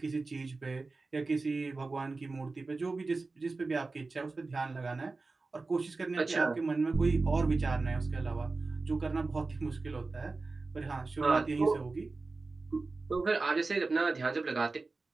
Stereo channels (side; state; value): left; quieter; 3.7 dB